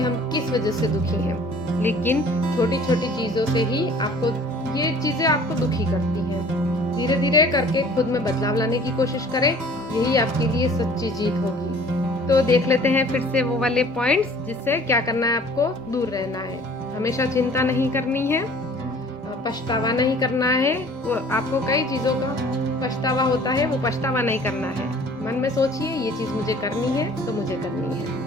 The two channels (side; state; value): both; normal; correlation 0.50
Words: हम किस वजह से दुखी हैं, लेकिन छोटी छोटी चीज़ों से ही ये चीज़ें आपको दुखी करती हैं। धीरे धीरे करके खुद में बदलाव लाने की कोशिश करें, यही आपके लिए सच्ची जीत होगी। तो देख लेते हैं फिर से वो वाले पॉइंट्स जिससे क्या करना है, आपको दूर रहना है। हमेशा चिंता नहीं करनी है, पछतावा नहीं करना है। वो आपको कई चीज़ों का पछतावा होता है, वो पछतावा नहीं करना है। मन में सोचिए ये चीज़ मुझे करनी है तो मुझे करनी है।